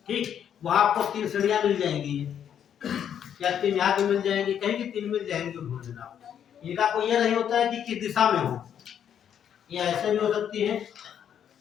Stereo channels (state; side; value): quieter; right; 9.0 dB